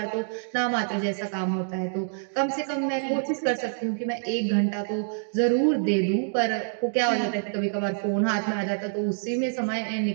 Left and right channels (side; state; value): left; silent; digital silence